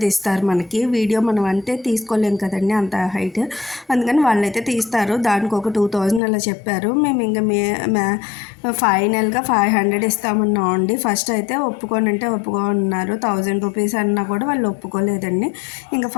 తీస్తారు మనకి. వీడియో మనం అంటే తీసుకోలేం కదండి అంత హైట్, అందుకని వాళ్ళైతే తీస్తారు. దానికి ఒక 2000 అలా చెప్పారు. మేము ఇంకా ఫైనల్గా 500 ఇస్తామన్నాం అండి. ఫస్ట్ అయితే ఒప్పుకోనంటే ఒప్పుకోన్నారు. 1000 రూపీస్ అన్నా కూడా వాళ్ళు ఒప్పుకోలేదండి. ఇంకా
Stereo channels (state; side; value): drops out; right; at 6.2 s